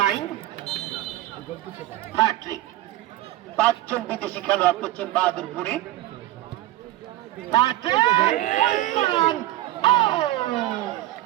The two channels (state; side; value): quieter; left; 15.8 dB